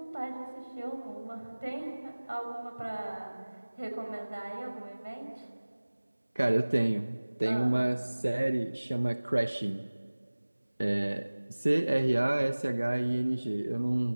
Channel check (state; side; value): inverted; both; correlation -1.00